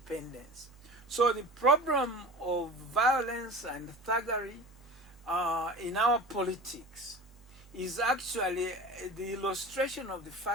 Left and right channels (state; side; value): normal; both; correlation 0.35